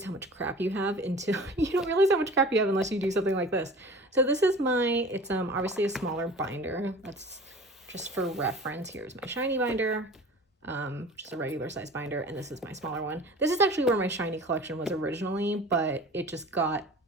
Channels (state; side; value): normal; both; correlation 0.41